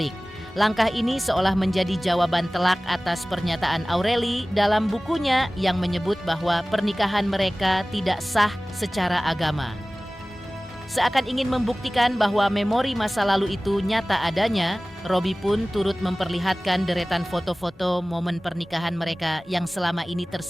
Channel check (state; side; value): normal; both; correlation 0.98